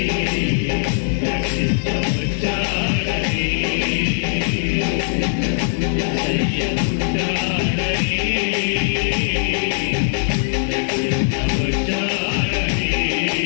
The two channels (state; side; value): silent; right; 61 dB below the other